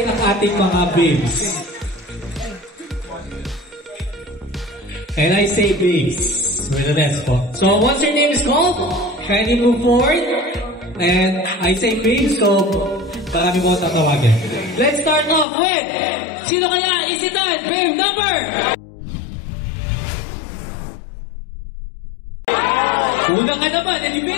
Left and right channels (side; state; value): right; drops out; at 15.5 s